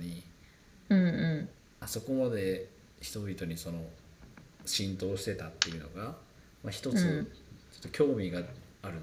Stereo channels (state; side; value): identical; both; correlation 1.00